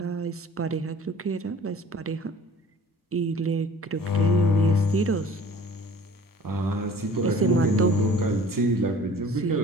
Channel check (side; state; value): both; normal; correlation 0.48